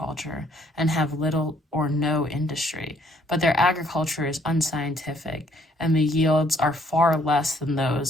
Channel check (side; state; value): both; normal; correlation 0.65